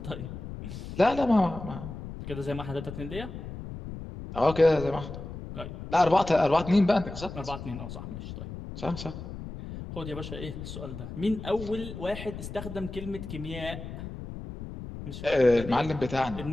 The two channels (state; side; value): noise; left; rumble, 10 dB below the sound